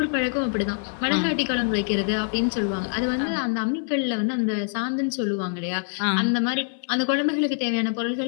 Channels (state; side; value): silent; right; 57 dB below the other